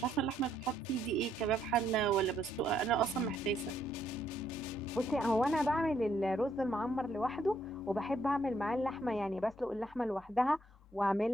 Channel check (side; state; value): both; normal; correlation 0.72